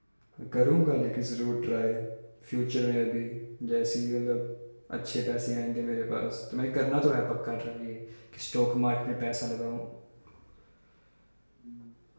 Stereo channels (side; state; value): both; inverted; correlation -1.00